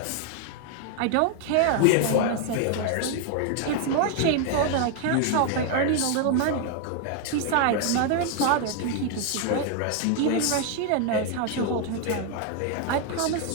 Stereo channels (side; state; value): both; different; correlation 0.00